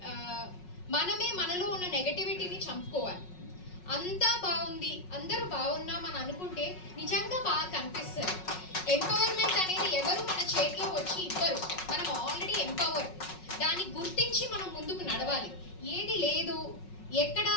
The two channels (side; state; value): right; late; 5.4 ms